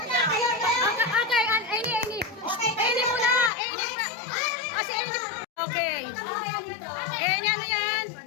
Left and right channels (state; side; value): drops out; right; at 3.5 s